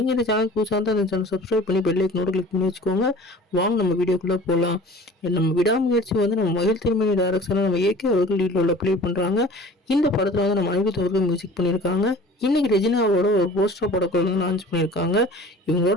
இந்த சேனல் புதுசாக இருந்தால் அந்த சேனல் சப்ஸ்கிரைப் பண்ணி பெல் ஐக்கனோட கிளிக் பண்ணி வச்சுக்கோங்க. வாங்க நம்ம வீடியோக்குள்ளே போகலாம். நம்ம விடாமுயற்சி வந்து நம்ம மகிழ் திருமணி டைரக்ஷனில் நம்ம ஏகே அவர்கள் லீடில் ப்ளே பண்ணுறாங்க. இந்த படத்தில் வந்து நம்ம அனிருத் அவர்கள் மியூசிக் பண்ணியிருக்காங்க. இன்னைக்கு ரெஜினாவோட ஒரு போஸ்டர் படக்குள்ள வந்து லான்ச் பண்ணியிருக்காங்க.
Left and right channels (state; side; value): normal; both; correlation 0.44